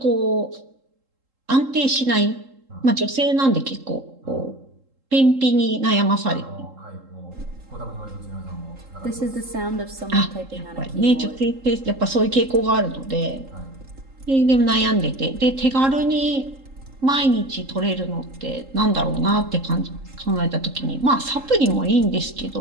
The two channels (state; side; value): late; left; 3.7 ms